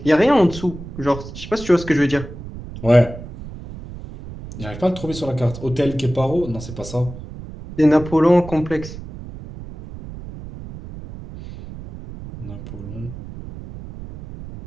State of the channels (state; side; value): noise; right; rumble, 12 dB below the sound